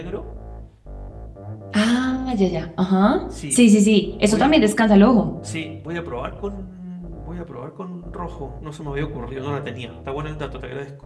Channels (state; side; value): identical; both; correlation 1.00